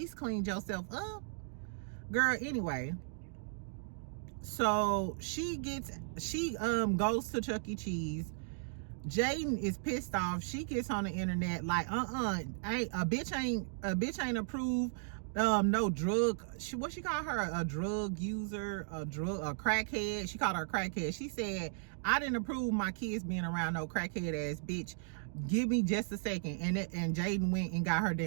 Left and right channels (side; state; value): left; silent; digital silence